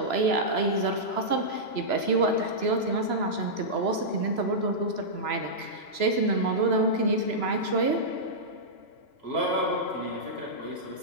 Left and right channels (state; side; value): late; right; 3.0 ms